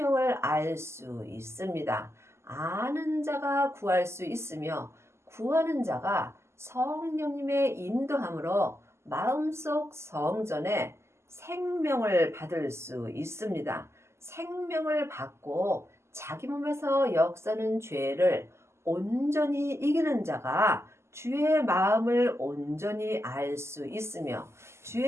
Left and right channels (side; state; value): left; late; 0.13 ms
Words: 알 수 있습니다. 아는 자가 구할 수 있으며 구하는 자가 성령님의 인도함으로 마음속 성전에 생명을 받을 수 있습니다. 생명을 받고 자기 몸에서 역사는 죄를 온전히 이기는 자가 주의 마음을 온전히 알 수 있으며